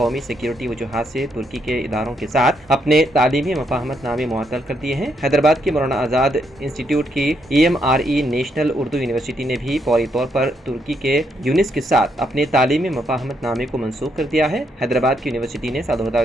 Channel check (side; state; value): both; normal; correlation 0.76